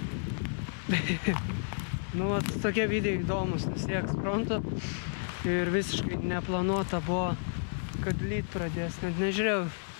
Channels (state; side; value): silent; right; 57 dB below the other